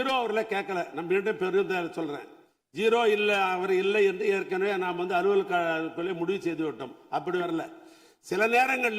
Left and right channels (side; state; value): both; identical; correlation 1.00